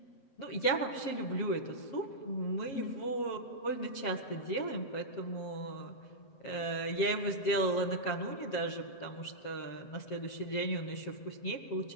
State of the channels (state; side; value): late; right; 7.3 ms